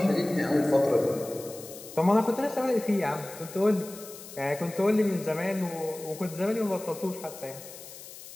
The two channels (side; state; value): left; noise; hiss, 15 dB below the sound